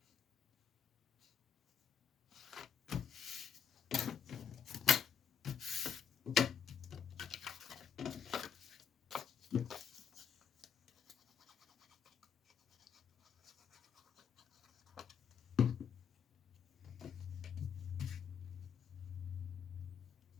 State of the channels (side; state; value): right; quieter; 7.3 dB